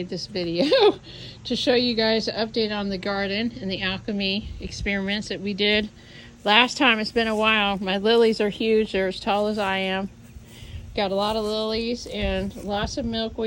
this video to show you guys an update on the garden and the alchemy experiments that we did last time. It's been a while. My lilies are huge. They're as tall as I am. Got a lot of lilies and lots of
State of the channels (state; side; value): identical; both; correlation 1.00